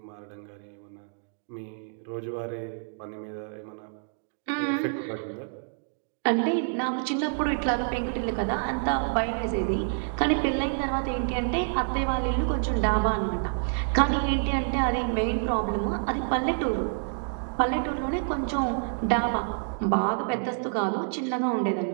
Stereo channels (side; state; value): left; silent; digital silence